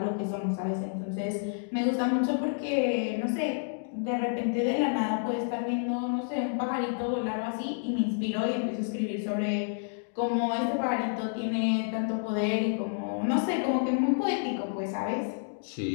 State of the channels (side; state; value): right; silent; digital silence